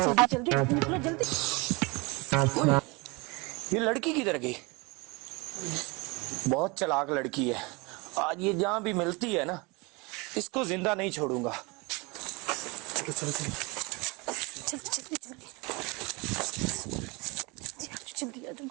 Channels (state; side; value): quieter; left; 27.1 dB